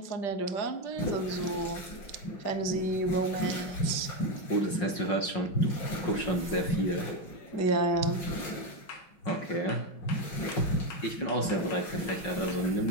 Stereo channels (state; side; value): late; right; 5.5 ms